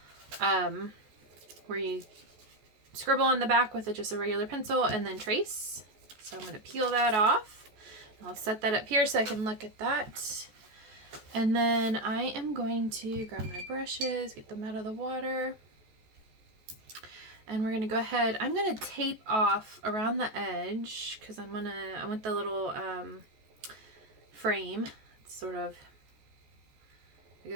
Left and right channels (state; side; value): late; left; 14 ms